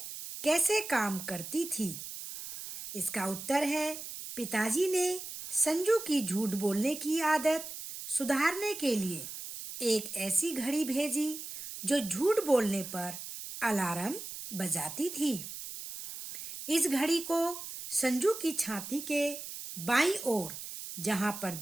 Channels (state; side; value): noise; right; hiss, 9 dB below the sound